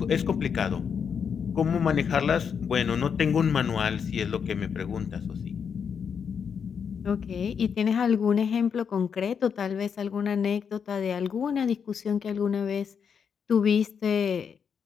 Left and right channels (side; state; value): right; quieter; 6.9 dB